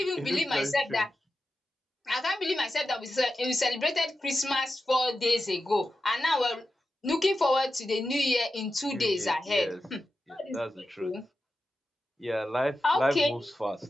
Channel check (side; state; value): both; normal; correlation 0.91